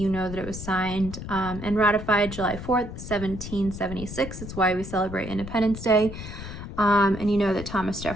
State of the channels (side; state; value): left; noise; rumble, 10 dB below the sound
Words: know that it was signed and ratified July 4th, 1776. It's why we celebrate Independence Day. And you know that Thomas